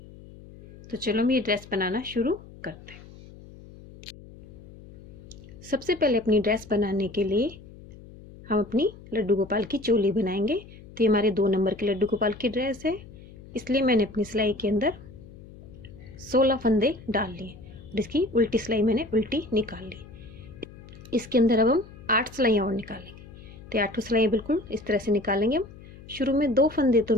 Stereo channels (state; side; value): noise; left; hum, 19 dB below the sound